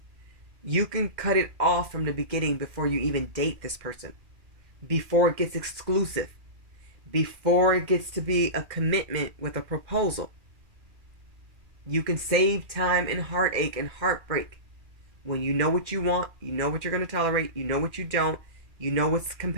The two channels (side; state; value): left; late; 2.4 ms